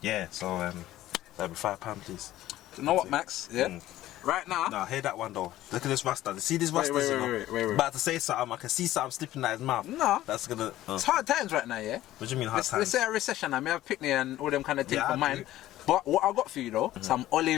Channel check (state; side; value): quieter; right; 14.6 dB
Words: yeah, so that'll be £5, please. You know what, Max? Yeah. Right now. Nah, hear that one though. Look at this Rasta. See this Rasta? Wait. About to say something. I can see something slipping out his mouth. No. That's gonna. It's hard times right now, yeah. What do you mean hard times? Let's say a recession. I may have picnic and all them kind of things Yeah, for I mine. do. But what I got for you though, some